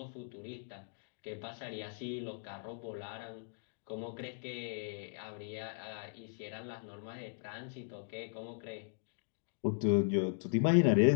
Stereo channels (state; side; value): silent; right; digital silence